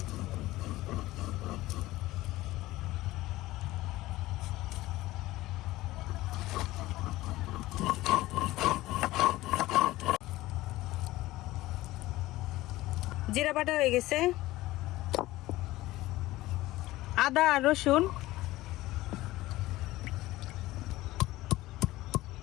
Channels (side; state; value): right; quieter; 17.5 dB